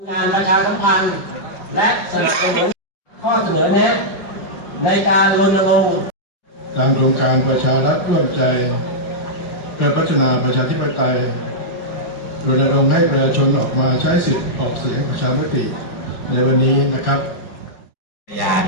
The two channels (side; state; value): right; late; 5.7 ms